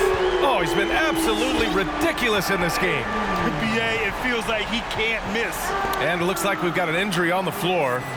Oh, he's been absolutely ridiculous in this game. BA, it feels like he can't miss. And it looks like we've got an injury on the floor.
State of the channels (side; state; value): both; identical; correlation 1.00